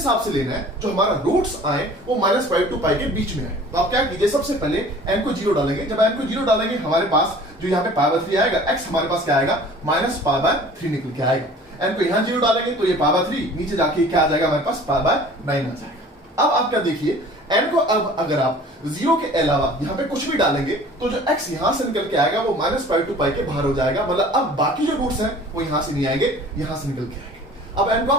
से लेना है जो हमारा रूट्स आए वो -पाई टू पाई के बीच में आए। तो आप क्या कीजिए, सबसे पहले n को 0 डालेंगे। जब n को 0 डालेंगे हमारे पास जो यहाँ पे पावर 3 आएगा, x हमारे पास क्या आएगा, -पाई/3 निकल के आएगा। n को यहाँ 0 डालेंगे तो ये पावर 3 नीचे जाके क्या आ जाएगा, हमारे पास पाई/9 आ जाएगा। अब आप क्या देखिए, n को अब अगर आप 0 के अलावा यहाँ पे कुछ भी डालेंगे तो जो x यहां से निकल के आएगा वो -पाई टू पाई के बाहर हो जाएगा, मतलब अब बाकी जो रूट्स हैं वो यहां से नहीं आएंगे, यहां से निकल के आएंगे। अब n को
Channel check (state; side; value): normal; both; correlation 0.47